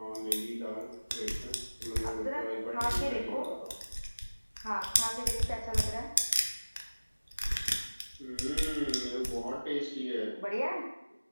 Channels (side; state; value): both; inverted; correlation -1.00